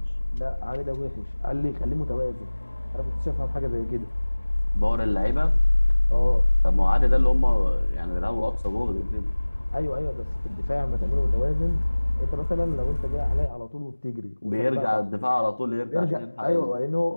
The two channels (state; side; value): inverted; both; correlation -1.00